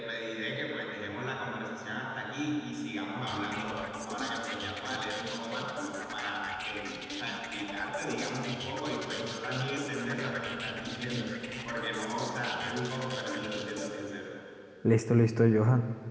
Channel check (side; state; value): both; identical; correlation 1.00